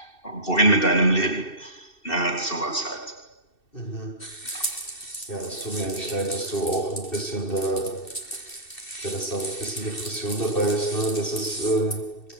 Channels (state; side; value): late; right; 2.7 ms